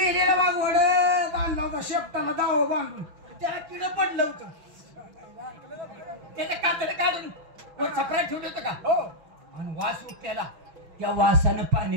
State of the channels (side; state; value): left; late; 6.1 ms